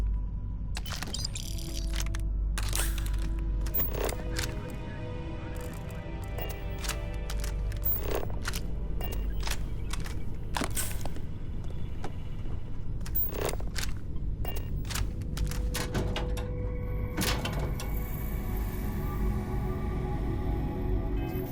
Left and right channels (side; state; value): both; identical; correlation 1.00